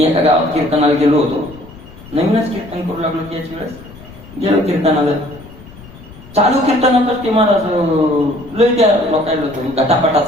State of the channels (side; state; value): left; noise; rumble, 19 dB below the sound